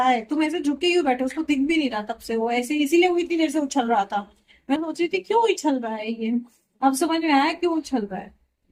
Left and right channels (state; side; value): identical; both; correlation 1.00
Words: है। तुम ऐसे झुके ही बैठे, उसको दिख भी नहीं रहा तब से, वो ऐसे इसीलिए वो इतनी देर से उछल रहा था। मैं सोच रही थी क्यों उछल रहा है ये, अब समझ में आया क्यों उछल रहा है।